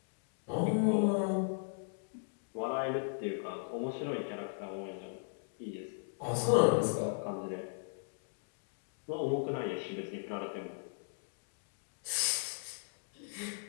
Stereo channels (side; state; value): right; silent; digital silence